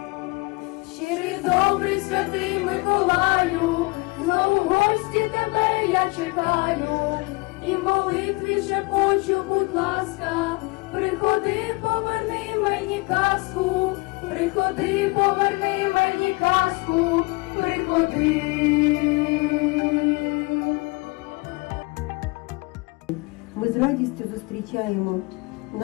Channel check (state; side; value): quieter; right; 26.1 dB